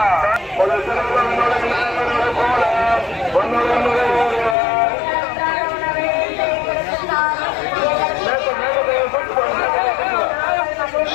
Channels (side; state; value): right; drops out; at 4.5 s